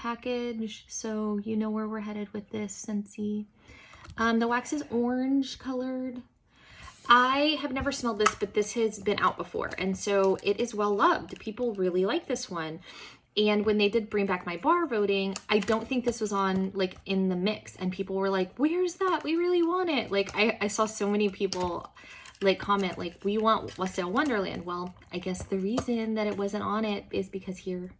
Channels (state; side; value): identical; both; correlation 1.00